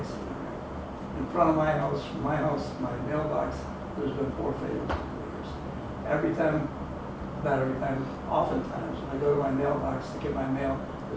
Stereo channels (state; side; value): identical; both; correlation 1.00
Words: rate. In front of my house, from my house to my mailbox, there's been 4 failures in 4 years. Oftentimes, when I go to my mailbox to get my mail,